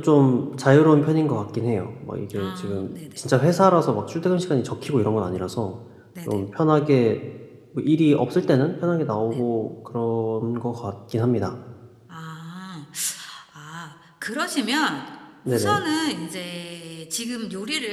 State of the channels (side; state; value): both; identical; correlation 1.00